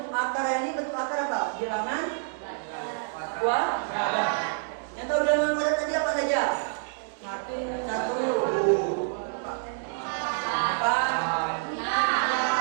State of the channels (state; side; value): silent; left; digital silence